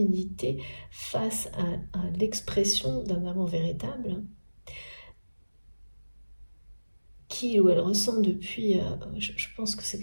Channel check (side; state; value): both; inverted; correlation -1.00